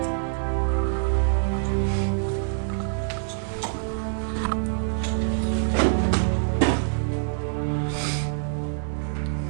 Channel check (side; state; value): left; silent; digital silence